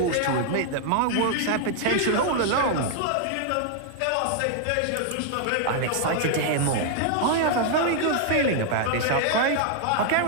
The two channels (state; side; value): different; both; correlation 0.00